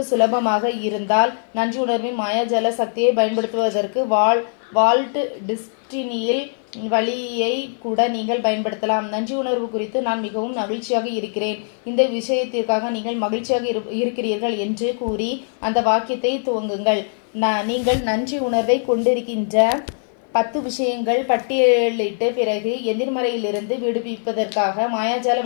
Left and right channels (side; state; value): right; silent; 57 dB below the other